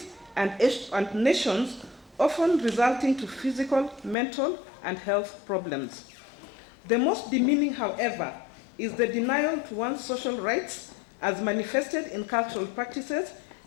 and nations, often resulting to physical, mental, and health problems. The most demeaning, however, is the denial to one's social rights as manifested in cultural practices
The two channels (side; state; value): right; drops out; at 4.2 s